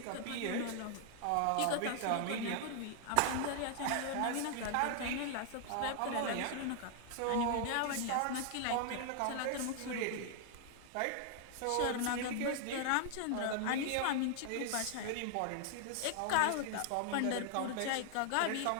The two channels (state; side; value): different; both; correlation 0.00